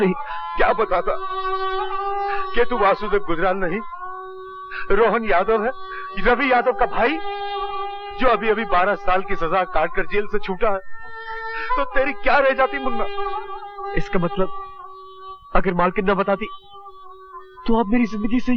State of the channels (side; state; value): both; identical; correlation 1.00